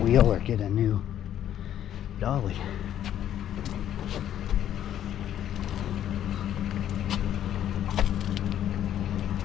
or get a new dolly.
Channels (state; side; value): quieter; right; 10.8 dB